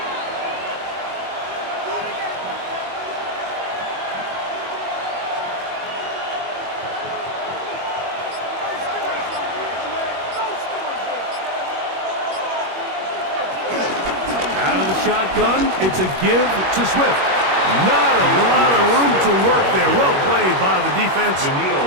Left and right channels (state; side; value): late; left; 21 ms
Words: Shotgun, it's a give to Swift. Not a lot of room to work there. Well played by the defense.